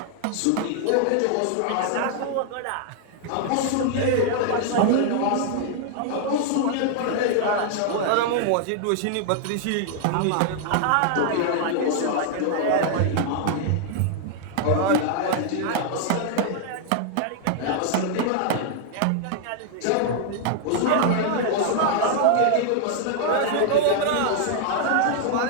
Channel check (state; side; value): different; both; correlation -0.01